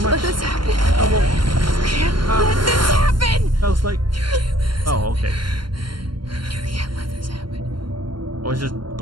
let this happen. Trouble. You can't let this happen. Sounds like. Oh, okay. You can't let this happen. I was just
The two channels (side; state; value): left; late; 0.72 ms